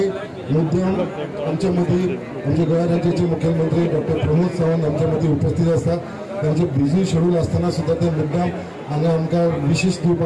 मुद्दाम आमच्या मदीं आमचे गोंय राज्याचे मुख्यमंत्री डॉक्टर प्रमोद सावंत आमच्या मदीं उपस्थित आसा। त्यांचे बिझी शेड्यूल असताना सुद्धा ते मुद्दाम हांगा आमकां विशेष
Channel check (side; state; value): both; identical; correlation 1.00